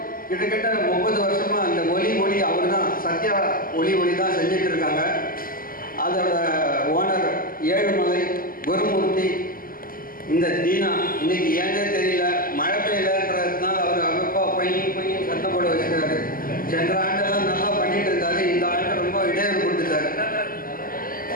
கிட்டத்தட்ட 30 வருஷமா அந்த ஒளி அவர் தான், சத்யா ஒளி தான் செஞ்சுட்டு இருக்காங்க. அதோட ஓனர் ஏழுமலை குருமூர்த்தி, இந்த தீனா இன்னைக்கு ஏன்னே தெரியல மழை பெய்யலன்றதுனால அவர் அமைப்பா பையன் சத்தம் போட வச்சுருக்காரு. சென்ற ஆண்டெல்லாம் நல்லா பண்ணிட்டு இருந்தாரு, இந்த ஆண்டு ரொம்ப இடையூறு கொடுத்துட்டாரு.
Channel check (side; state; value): right; late; 0.42 ms